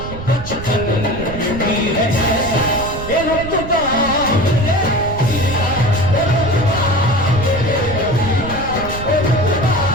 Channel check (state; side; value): noise; right; rumble, 10 dB below the sound